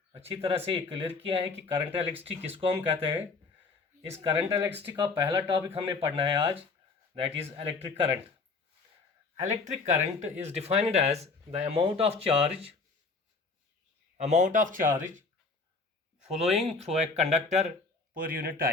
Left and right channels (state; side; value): quieter; right; 4.1 dB